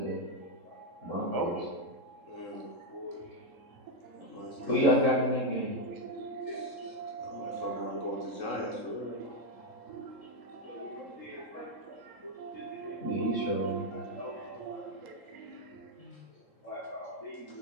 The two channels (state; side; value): late; right; 3.7 ms